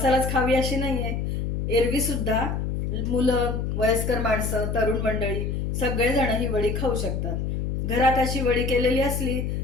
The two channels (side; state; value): left; noise; hum, 2 dB below the sound